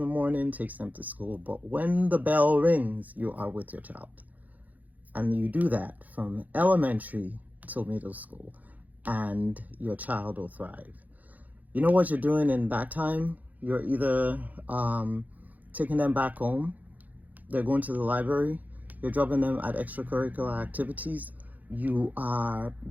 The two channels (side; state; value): left; late; 0.080 ms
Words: morning, takes them to school, but when the bell rings, you are with your child. And you do that from elementary till middle school, and your child will thrive. You know what you're doing in that time? You're either taking them back home, they're going to the library, you're dropping them at extracurricular activities, you are